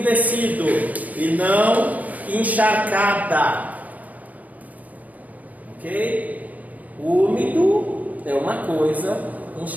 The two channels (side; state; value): left; late; 0.076 ms